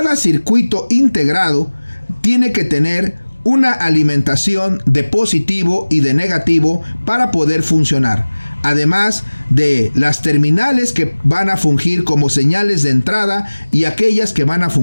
circuito integrado tiene que tener una alimentación de positivo y de negativo para poder funcionar. Además de las terminales que van a fungir como señales de entrada y aquellas que van a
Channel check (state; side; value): inverted; both; correlation -1.00